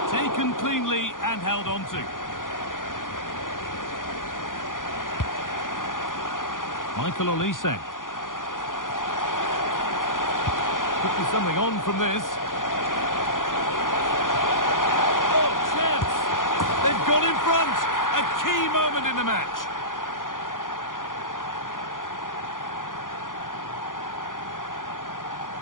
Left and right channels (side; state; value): right; late; 0.89 ms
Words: Taken cleanly and held on to. Michael Olise. Could be something on from this. Oh, chance! They've gone in front! A key moment in the match.